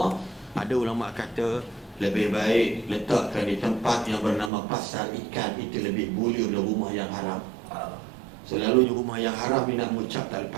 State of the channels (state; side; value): drops out; left; at 4.5 s